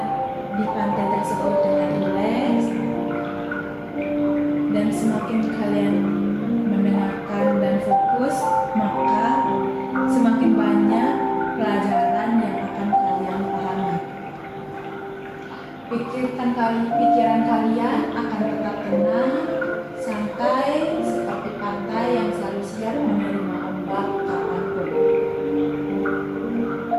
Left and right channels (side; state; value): both; identical; correlation 1.00